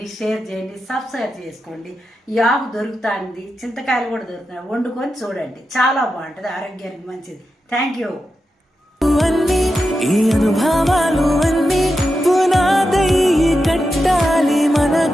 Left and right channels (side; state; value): both; normal; correlation 0.89